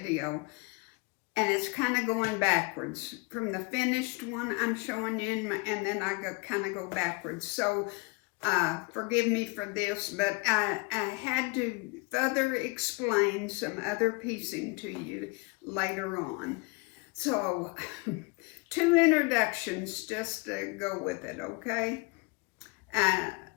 and it's kind of going backwards. From the finished one I'm showing you, and then I kind of go backwards. So forgive me for this, but I had to further explain some other piecing to you later on. So, two introductions just to go with it, okay?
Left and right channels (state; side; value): quieter; right; 27.9 dB